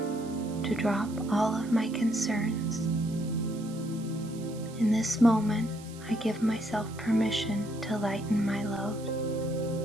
to drop all of my concerns. In this moment, I give myself permission to lighten my load.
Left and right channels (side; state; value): right; noise; hiss, 20 dB below the sound